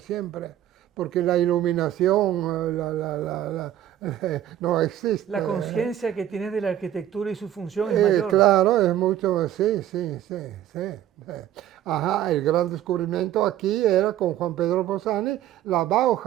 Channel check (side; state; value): left; quieter; 11.8 dB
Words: porque la iluminación no existe. La conciencia que tienes de la arquitectura y su función es mayor. Claro, es mucho, sí. Ajá, el gran descubrimiento aquí era con Juan Pedro Bossani, la